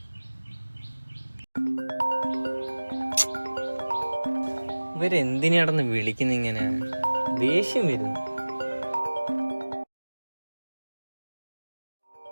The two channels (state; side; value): inverted; both; correlation -1.00